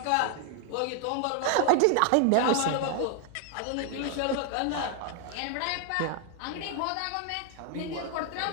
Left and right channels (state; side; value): different; both; correlation 0.00